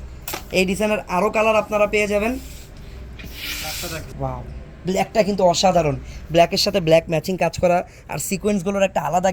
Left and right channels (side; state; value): both; identical; correlation 1.00